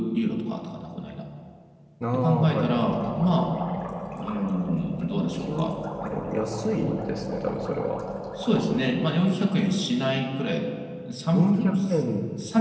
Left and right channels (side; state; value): both; identical; correlation 1.00